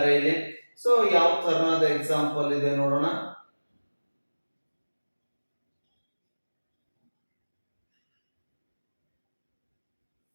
ಇಲ್ಲಿ. ಸೊ ಯಾವ ತರನಾದ ಎಕ್ಸಾಂಪಲ್ ಇದೆ ನೋಡೋಣ.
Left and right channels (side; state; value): both; inverted; correlation -1.00